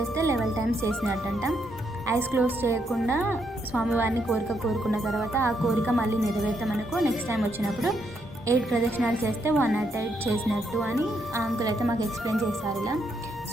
11 times చేసినట్టంట. ఐస్ క్లోజ్ చేయకుండా స్వామివారిని కోరుకున్న తర్వాత ఆ కోరిక మళ్ళీ నెరవేర్తామనుకో నెక్స్ట్ టైం వచ్చినప్పుడు 8 ప్రదక్షిణాలు చేస్తే 108 చేసినట్టు అని ఆ అంకుల్ అయితే మాకు ఎక్స్ప్లెయిన్ చేశారు ఇలా.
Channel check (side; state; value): both; normal; correlation 0.77